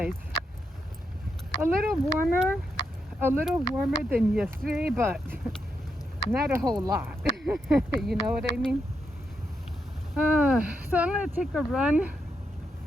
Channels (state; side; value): normal; both; correlation 0.82